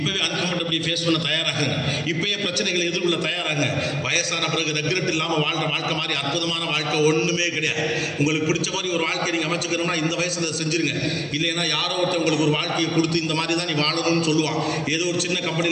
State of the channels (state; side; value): identical; both; correlation 1.00